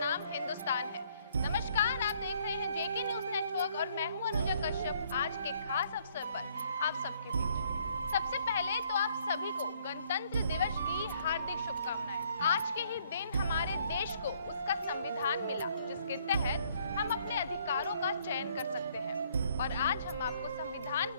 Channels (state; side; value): inverted; both; correlation -0.65